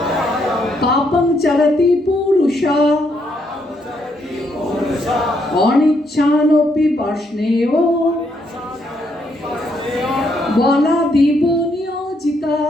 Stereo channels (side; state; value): both; normal; correlation 0.75